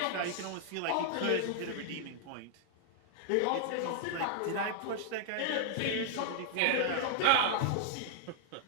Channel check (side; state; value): both; different; correlation -0.01